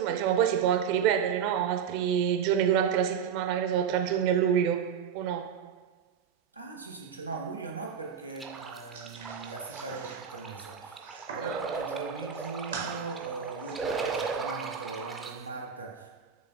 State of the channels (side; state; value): left; quieter; 7.7 dB